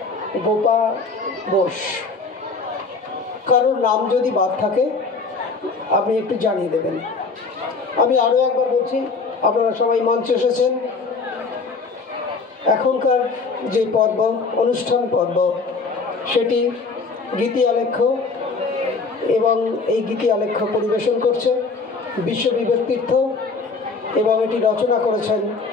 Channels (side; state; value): right; quieter; 4.3 dB